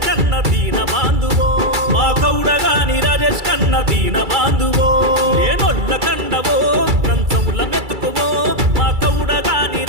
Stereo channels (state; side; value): late; left; 2.3 ms